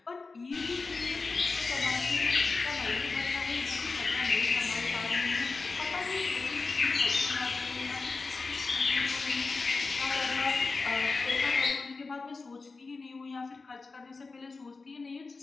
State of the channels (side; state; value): right; quieter; 4.1 dB